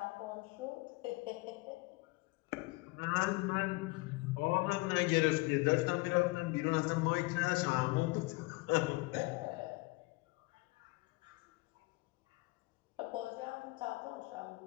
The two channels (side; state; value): right; quieter; 24.0 dB